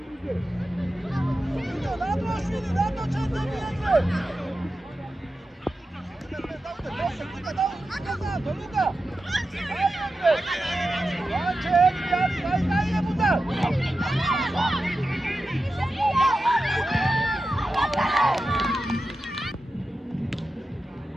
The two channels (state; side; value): normal; both; correlation 0.92